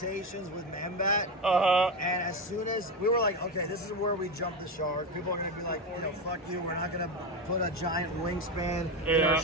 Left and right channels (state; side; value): normal; both; correlation 0.16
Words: with Man-Bat, and as soon as we were like, okay, this is where we jump the shark. People are gonna be like, fuck you, we're not gonna put a giant wingspan in our